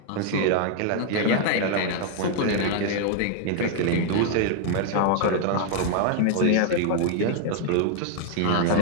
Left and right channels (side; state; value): both; different; correlation 0.00